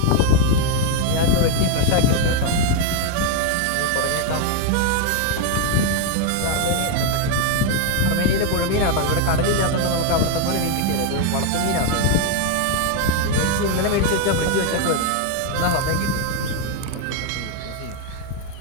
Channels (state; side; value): different; both; correlation 0.00